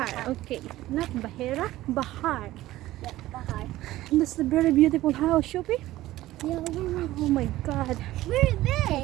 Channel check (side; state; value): left; quieter; 16.0 dB